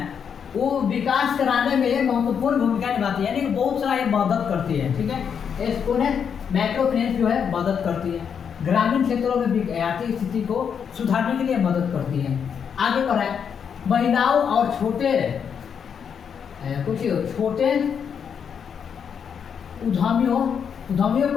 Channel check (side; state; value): right; quieter; 7.3 dB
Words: वो विकास कराने में महत्वपूर्ण भूमिका निभाती है, यानी कि बहुत सारा ये मदद करती है। ठीक है, इसको है माइक्रो फाइनेंस जो है मदद करती है, ग्रामीण क्षेत्रों में आर्थिक स्थिति को सुधारने के लिए मदद करती है। आगे बढ़ा है महिलाओं और छोटे उद्यमियों